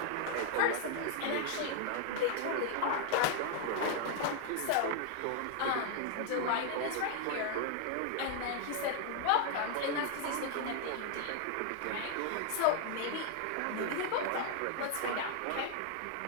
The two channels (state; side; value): different; both; correlation 0.00